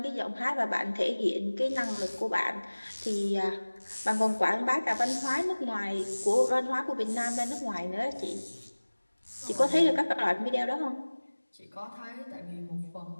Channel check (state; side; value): inverted; both; correlation -1.00